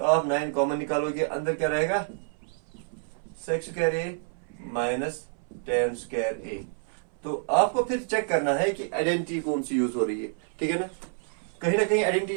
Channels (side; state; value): left; silent; 59 dB below the other